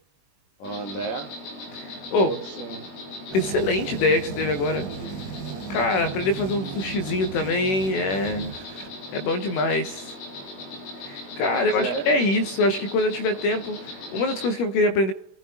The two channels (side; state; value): right; late; 21 ms